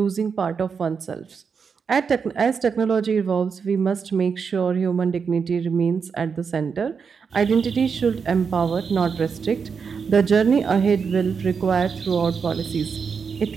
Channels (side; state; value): left; quieter; 5.9 dB